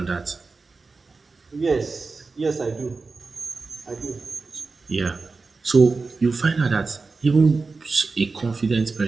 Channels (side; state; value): left; quieter; 4.1 dB